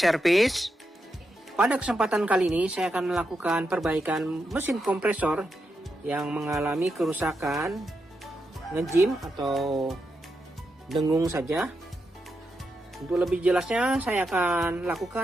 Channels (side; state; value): both; normal; correlation 0.85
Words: pada kesempatan kali ini saya akan melakukan perbaikan mesin kompresor yang mengalami kerusakan ngejim atau dengung saja. Untuk lebih jelasnya saya akan